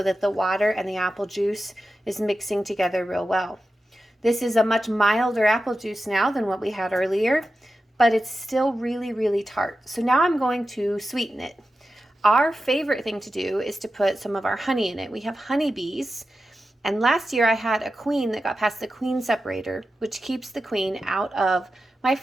that the water and the apple juice is mixing together real well. This is a much milder apple juice now than what we had earlier, but it's still really, really tart. So now I'm going to sweeten it. Our favorite thing to do is to put some of our honey in it. We have honeybees, and last year I had a queen that got past the queen separator, which keeps the queen out of my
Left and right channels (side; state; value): both; normal; correlation 0.92